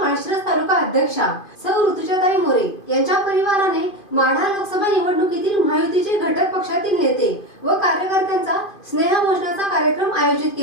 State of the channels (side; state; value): right; late; 2.5 ms